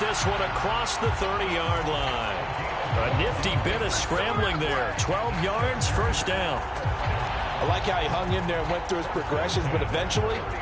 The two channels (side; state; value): both; identical; correlation 1.00